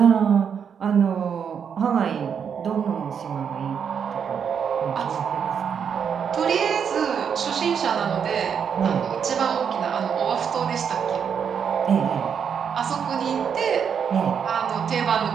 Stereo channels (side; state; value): left; quieter; 7.3 dB